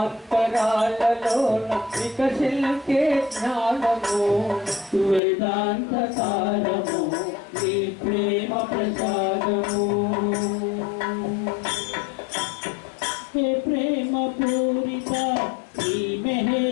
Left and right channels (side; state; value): right; drops out; at 5.2 s